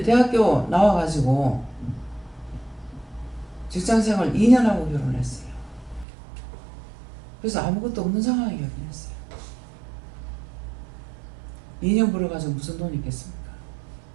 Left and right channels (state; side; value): drops out; left; at 6.1 s